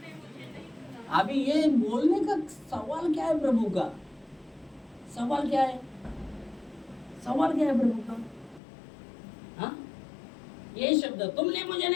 अभी ये बोलने का सवाल क्या है प्रभु का? सवाल क्या है? सवाल क्या है प्रभु का? हाँ, ये शब्द तुमने मुझे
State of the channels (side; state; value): right; drops out; at 8.6 s